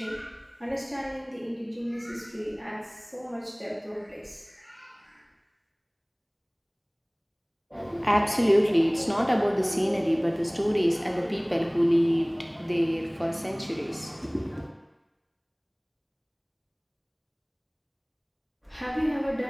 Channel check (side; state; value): both; identical; correlation 1.00